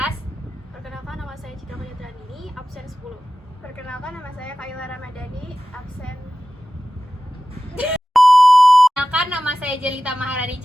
Perkenalkan, nama saya Citra Ini, absen 10. Perkenalkan, nama saya Kaila Ramadhani, absen. Perkenalkan, nama saya Jelita Maharani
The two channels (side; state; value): both; normal; correlation 0.95